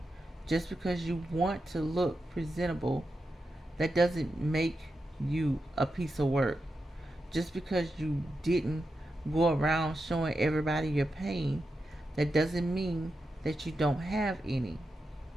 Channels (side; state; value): both; normal; correlation 0.88